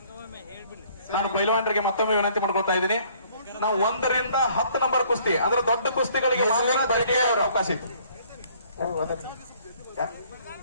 ನಾನು ಪೈಲ್ವಾನರಿಗೆ ಮತ್ತೊಮ್ಮೆ ವಿನಂತಿ ಮಾಡ್ಕೊಳ್ತಾ ಇದ್ದೀನಿ. ನಾವು 1 ರಿಂದ 10 ನಂಬರ್ ಕುಸ್ತಿ ಅಂದ್ರೆ ದೊಡ್ಡ ಕುಸ್ತಿಗಳಿಗೆ ಅವಕಾಶ ಇತ್ತು.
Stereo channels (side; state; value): both; inverted; correlation -0.59